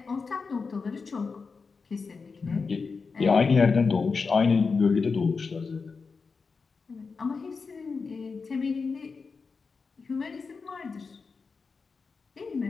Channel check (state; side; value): quieter; right; 4.8 dB